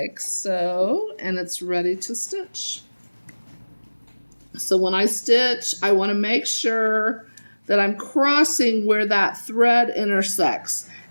so. And it's ready to stitch. So when I stitch, I want to make sure that I'm crossing where that thread intersects.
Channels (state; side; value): inverted; both; correlation -1.00